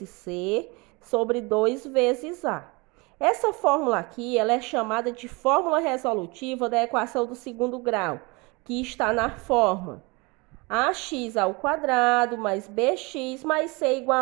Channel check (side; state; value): left; quieter; 26.9 dB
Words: c sobre 2 vezes a. Essa fórmula aqui ela é chamada de fórmula resolutiva da equação do segundo grau, que está na forma ax ao quadrado mais bx mais c